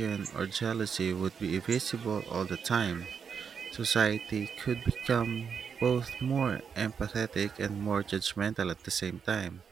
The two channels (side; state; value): left; quieter; 6.6 dB